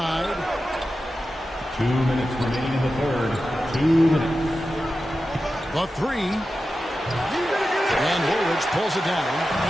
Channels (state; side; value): normal; both; correlation 0.92